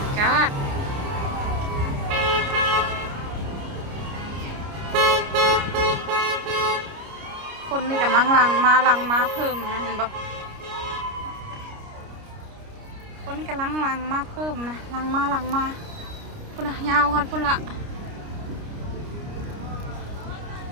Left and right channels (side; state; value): left; late; 29 ms